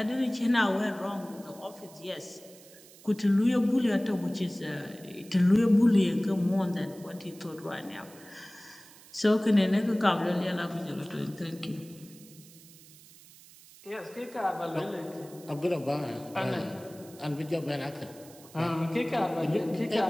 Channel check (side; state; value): right; noise; hiss, 22 dB below the sound